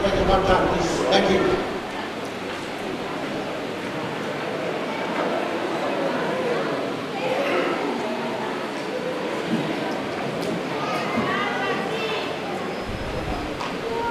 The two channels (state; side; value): identical; both; correlation 1.00